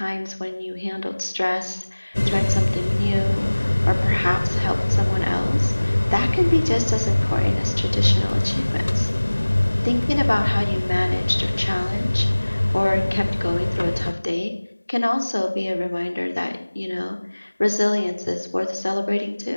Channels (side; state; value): both; inverted; correlation -1.00